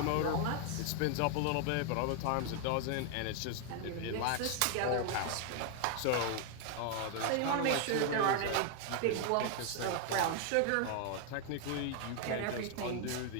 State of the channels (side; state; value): both; different; correlation 0.00